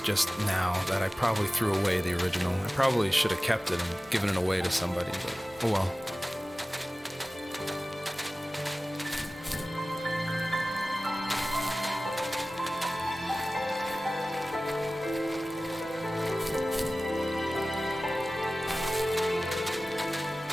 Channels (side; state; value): both; normal; correlation 0.97